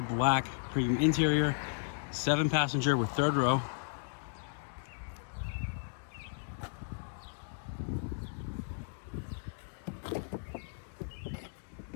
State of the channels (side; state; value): right; silent; digital silence